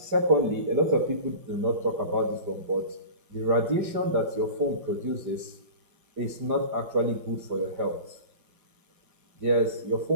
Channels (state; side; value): late; left; 5.1 ms